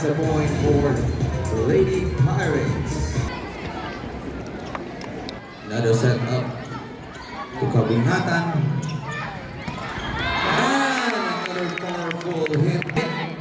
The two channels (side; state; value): both; identical; correlation 1.00